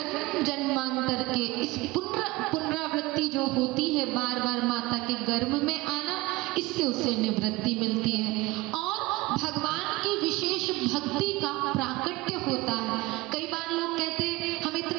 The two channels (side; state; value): left; quieter; 20.9 dB